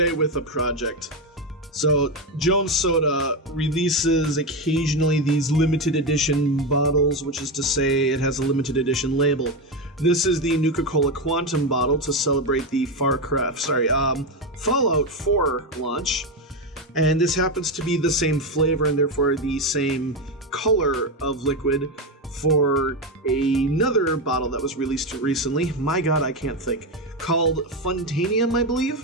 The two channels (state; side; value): normal; both; correlation 0.12